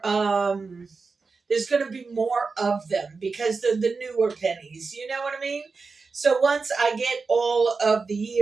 there's going to be more of them because they're the newer pennies. You know what I mean? So once I get all of the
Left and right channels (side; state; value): left; quieter; 4.5 dB